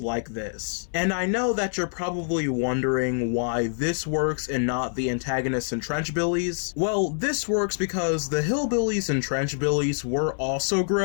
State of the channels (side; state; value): right; silent; 61 dB below the other